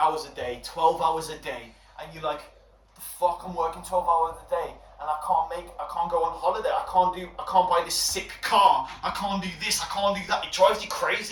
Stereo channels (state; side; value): identical; both; correlation 1.00